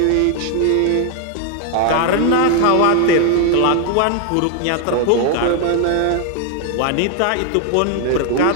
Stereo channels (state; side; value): different; both; correlation 0.00